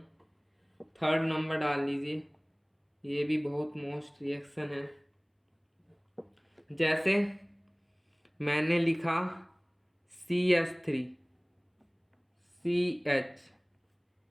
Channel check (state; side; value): identical; both; correlation 1.00